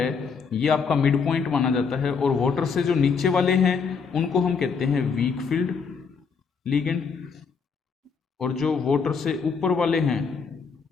ये आपका मिड पॉइंट माना जाता है, और वाटर से जो नीचे वाले हैं उनको हम कहते हैं वीक फील्ड लिगेंड, और जो वाटर से ऊपर वाले हैं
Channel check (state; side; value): quieter; right; 5.7 dB